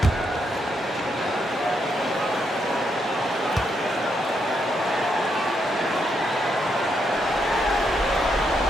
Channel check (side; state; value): both; normal; correlation 0.79